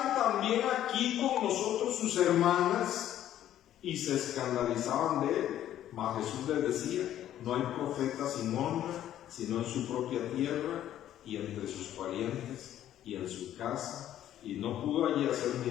también aquí con nosotros sus hermanas? Y se escandalizaban de él. Mas Jesús les decía: no hay profeta sin honra, sino en su propia tierra y entre sus parientes y en su casa. Y no pudo allí hacer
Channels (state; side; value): quieter; right; 11.8 dB